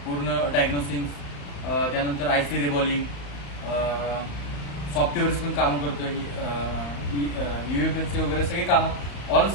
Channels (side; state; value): right; late; 35 ms